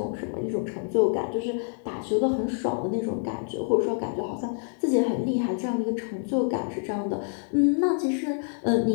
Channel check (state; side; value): silent; right; 58 dB below the other